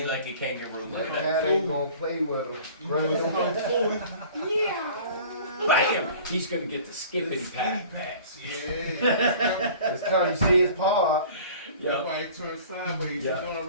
like a kangaroo. Look at that Cat fool. ain't gonna play with her. Right? Bam! He's gonna get the skippity pat. Pats. Yeah. It's cause you see his paw up. Yep. Nobody turn sideways. Yeah. You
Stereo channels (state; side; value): inverted; both; correlation -0.46